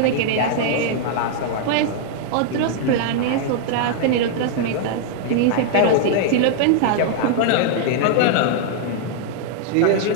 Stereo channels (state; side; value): different; both; correlation -0.01